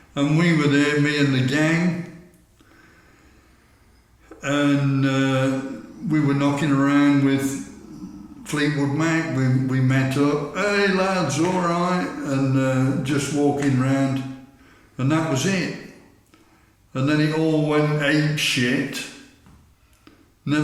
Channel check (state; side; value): identical; both; correlation 1.00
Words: And we were there, me and the gang, and we were knocking around with Fleetwood Mac. We met up, hey lads, all right, and just walking around, and that was it. And then it all went ape shit.